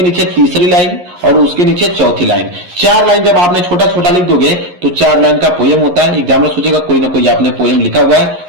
तीसरी लाइन और उसके नीचे चौथी लाइन। 4 लाइन जब आपने छोटा छोटा लिख दोगे तो 4 लाइन का पोयम होता है। एग्जामिनर सोचेगा कोई ना कोई आपने पोयम लिखा हुआ है,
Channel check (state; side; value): late; left; 11 ms